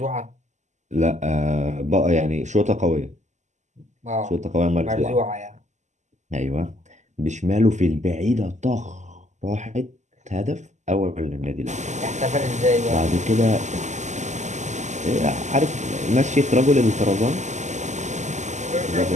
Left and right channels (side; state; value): left; late; 0.34 ms